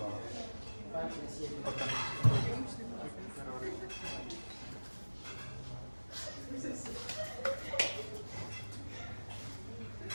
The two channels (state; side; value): inverted; both; correlation -1.00